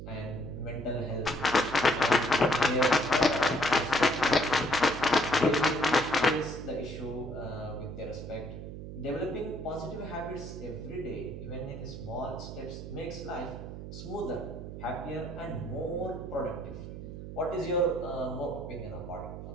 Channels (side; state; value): right; noise; hum, 9 dB below the sound